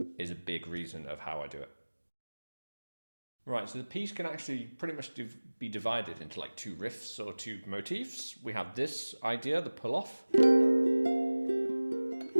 is a big reason of how I do it. Right, so the piece can actually pretty much be divided into like two riffs or two motifs. We have this idea, the pull-off,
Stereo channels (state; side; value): inverted; both; correlation -1.00